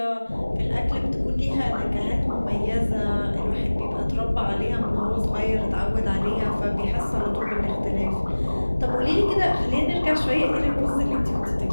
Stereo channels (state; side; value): inverted; both; correlation -1.00